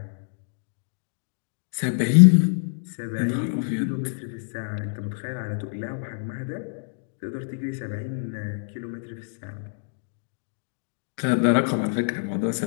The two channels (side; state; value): right; silent; digital silence